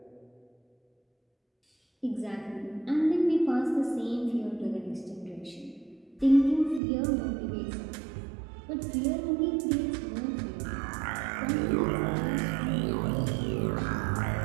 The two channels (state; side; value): drops out; left; at 6.8 s